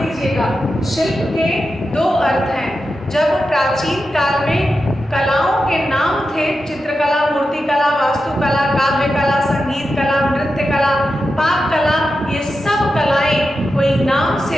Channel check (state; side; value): normal; both; correlation 0.90